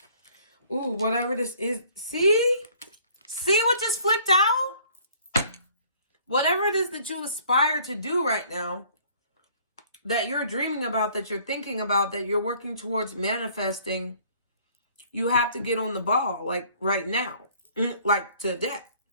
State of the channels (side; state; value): both; inverted; correlation -0.57